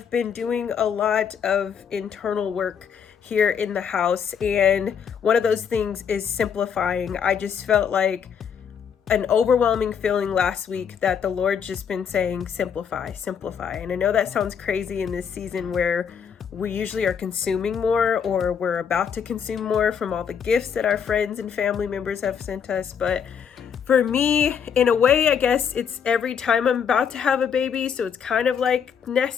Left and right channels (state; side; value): quieter; right; 7.4 dB